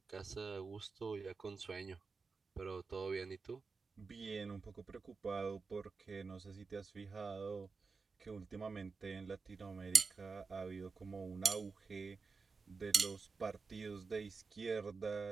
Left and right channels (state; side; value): quieter; left; 4.6 dB